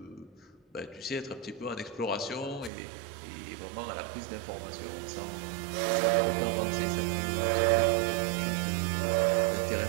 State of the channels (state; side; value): drops out; left; at 2.7 s